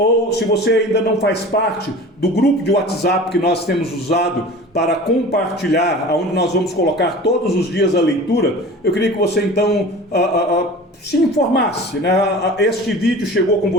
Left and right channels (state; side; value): normal; both; correlation 0.39